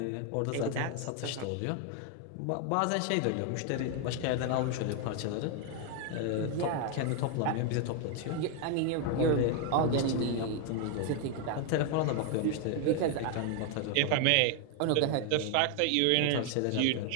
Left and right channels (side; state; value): both; different; correlation 0.00